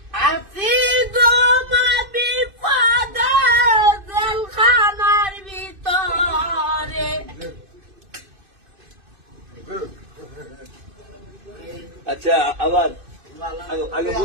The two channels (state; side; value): late; left; 2.5 ms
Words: আছি গো মা বিপদে জেলখানার ভিতরে। আচ্ছা আবার আগে